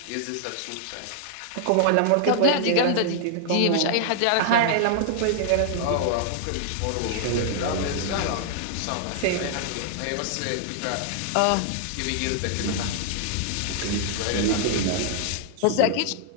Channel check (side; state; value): both; different; correlation 0.00